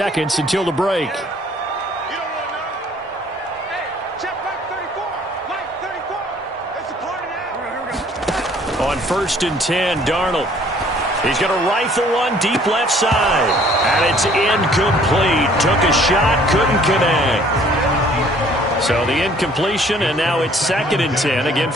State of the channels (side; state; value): both; normal; correlation 0.57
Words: until the break. On 1st and 10, Darnold. He's going to rifle one deep left side. And it's incomplete. Took a shot, couldn't connect. So the incompletion, and now it's 2nd and 10, again